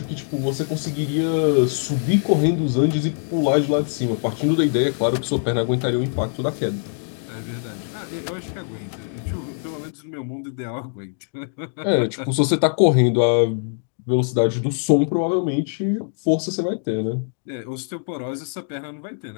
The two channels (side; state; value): right; silent; digital silence